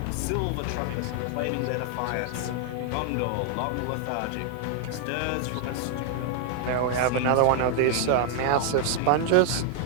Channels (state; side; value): different; both; correlation 0.00